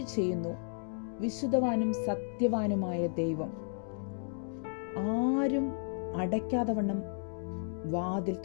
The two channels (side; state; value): right; silent; 55 dB below the other